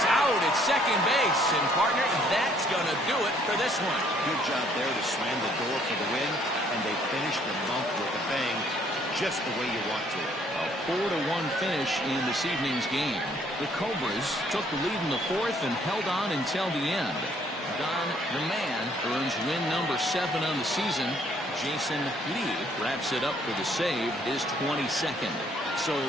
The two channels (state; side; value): normal; both; correlation 0.64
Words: out at second base. And partner, that's going to do it for this one. Good job there to slam the door for the win. And they finished the month with a bang, just the way you want to. A 4-1 finish in this evening's game. The Cobras took the lead in the 4th and held on until the end. Don the Man earns win number 7 on the season. Jason Lee wraps it up for the save, his 22nd. So